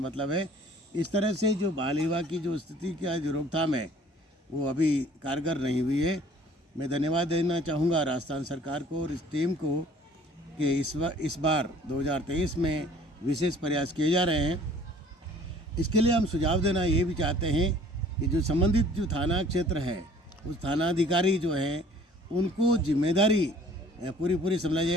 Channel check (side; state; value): both; normal; correlation 0.52